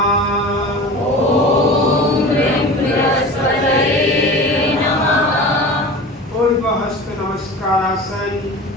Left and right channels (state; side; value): normal; both; correlation 0.34